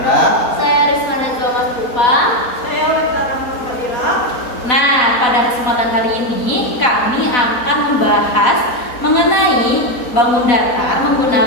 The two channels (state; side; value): late; right; 4.1 ms